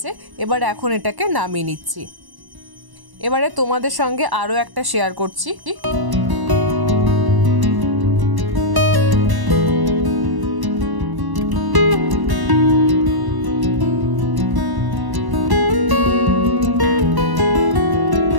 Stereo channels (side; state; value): left; late; 1.1 ms